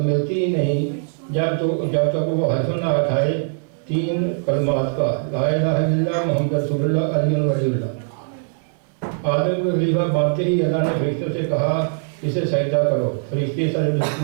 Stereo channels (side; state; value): left; silent; digital silence